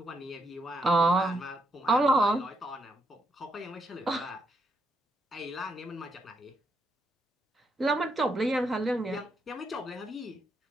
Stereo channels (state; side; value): normal; both; correlation 0.79